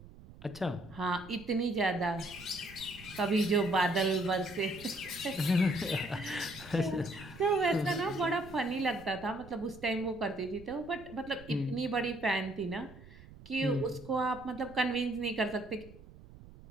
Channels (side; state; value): right; noise; rumble, 19 dB below the sound